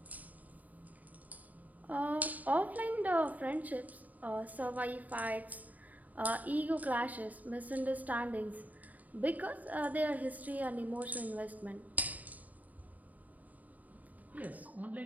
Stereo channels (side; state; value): left; late; 0.076 ms